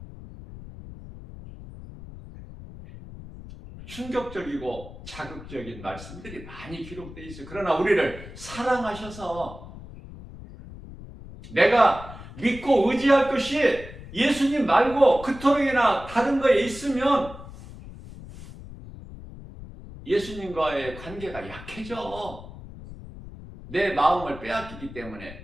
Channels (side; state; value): left; noise; rumble, 15 dB below the sound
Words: 충격적이고 자극적인 말씀들이 많이 기록되어 있어요. 그러나 우리를 사랑하셔서 내가 믿고 의지할 것이 예수님 말고 그토록이나 다른 거에 있으면 예수님과의 관계가 약해져. 내 마음을 빼앗기기